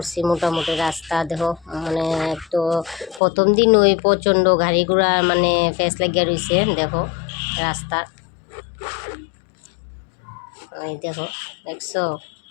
মোটামুটি রাস্তা দেখো, মানে তো প্রথম দিন ওই প্রচণ্ড গাড়ি ঘোড়া মানে ফেস লাগিয়ে রয়েছে দেখো রাস্তা। এই দেখো, দেখছো?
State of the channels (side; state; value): right; drops out; at 3.2 s